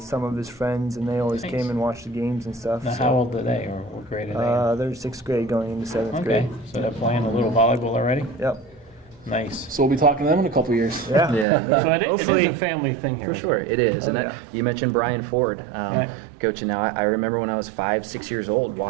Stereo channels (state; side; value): drops out; left; at 11.5 s